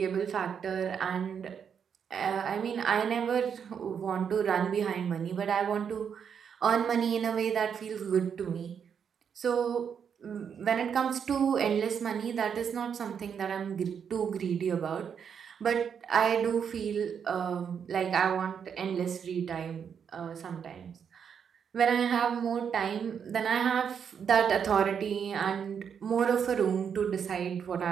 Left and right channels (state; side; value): quieter; left; 7.4 dB